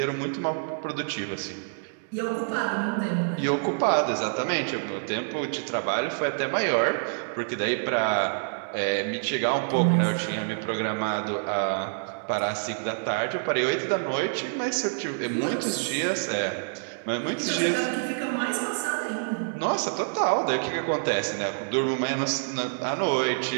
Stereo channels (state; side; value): silent; left; digital silence